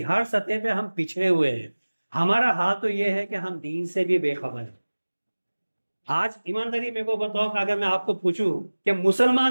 ہر سطح پہ ہم پچھڑے ہوئے ہیں. ہمارا حال تو یہ ہے کہ ہم دین سے بھی بے خبر ہیں. آج ایمانداری میرے کو بتاؤ کہ اگر میں آپ کو پوچھوں کہ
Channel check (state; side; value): inverted; both; correlation -1.00